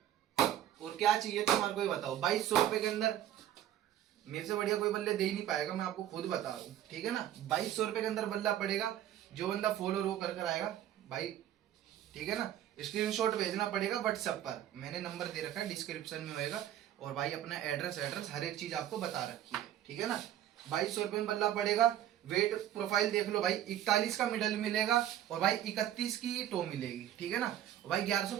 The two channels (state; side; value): quieter; left; 11.7 dB